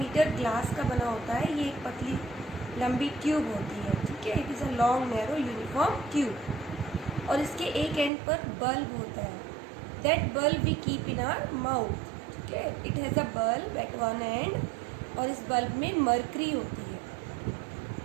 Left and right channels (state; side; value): drops out; left; at 8.1 s